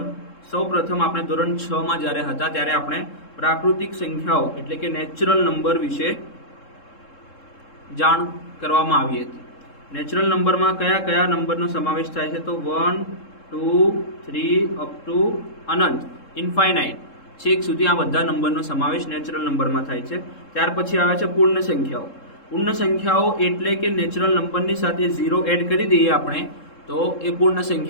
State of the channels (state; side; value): late; right; 3.7 ms